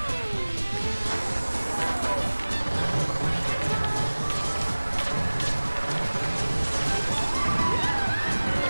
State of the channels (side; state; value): both; inverted; correlation -1.00